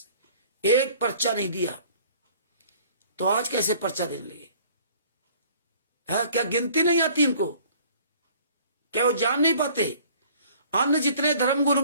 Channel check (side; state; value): both; inverted; correlation -0.52